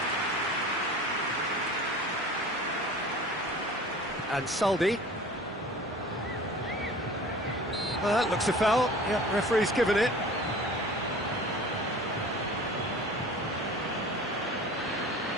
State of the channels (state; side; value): normal; both; correlation 0.42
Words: And Saldi. Well, that looks a foul, yeah, referee's given it.